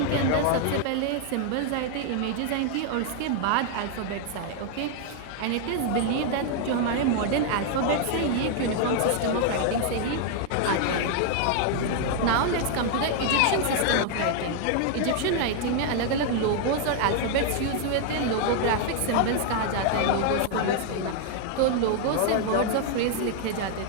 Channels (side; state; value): both; different; correlation 0.00